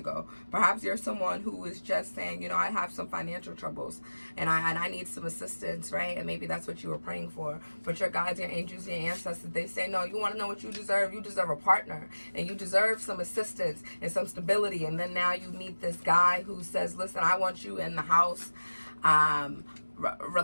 go. Perhaps you're someone who is just saying, I have some financial troubles, and I need some assistance, right? And maybe that's what you were praying for. But your guides, your angels, your ancestors, they say, no, you want to know what you deserve? You deserve a partner, and you deserve some assistance and some stability. And then now you meet this guy who says, listen, I want you in the house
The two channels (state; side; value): inverted; both; correlation -1.00